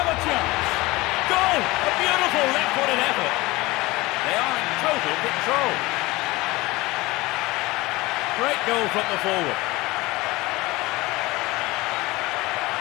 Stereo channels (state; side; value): quieter; right; 20.9 dB